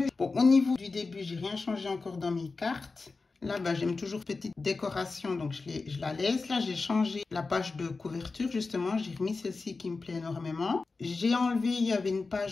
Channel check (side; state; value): right; quieter; 4.0 dB